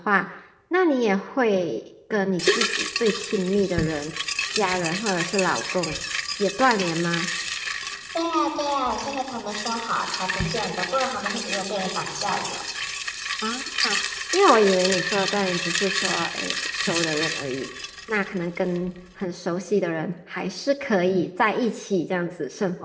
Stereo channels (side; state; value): both; identical; correlation 1.00